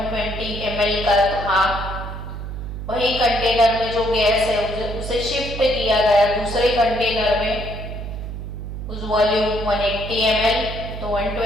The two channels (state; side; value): noise; right; hum, 7 dB below the sound